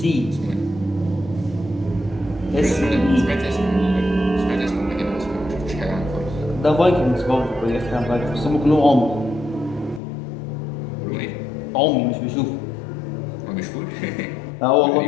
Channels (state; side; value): drops out; right; at 10.0 s